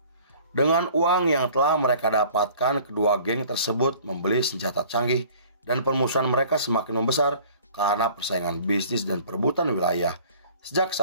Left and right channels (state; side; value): inverted; both; correlation -0.50